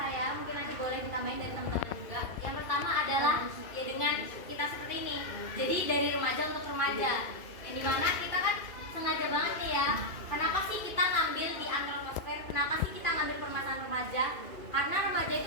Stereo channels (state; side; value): late; right; 2.5 ms